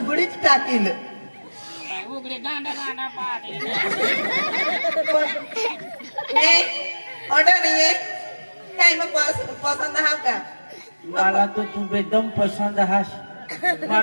टाकील उघडे गांडा गांडा पाडे ए ऑर्डर नाही आहे काय मग पसंत हा का मला तो तू एकदम पसंद हास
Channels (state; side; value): inverted; both; correlation -1.00